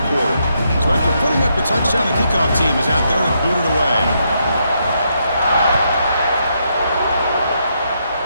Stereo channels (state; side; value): inverted; both; correlation -0.78